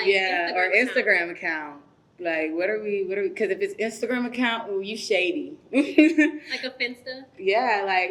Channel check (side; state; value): both; identical; correlation 1.00